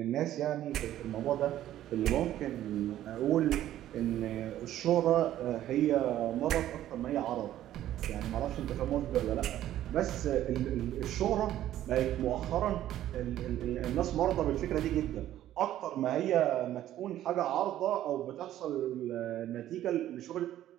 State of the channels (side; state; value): left; quieter; 12.7 dB